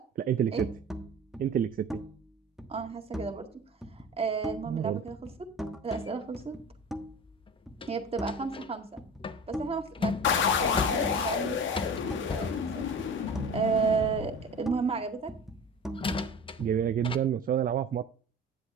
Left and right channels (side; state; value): both; normal; correlation 0.36